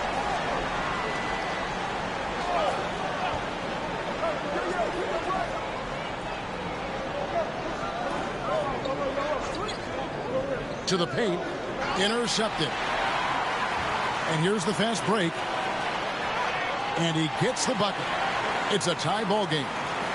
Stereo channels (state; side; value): identical; both; correlation 1.00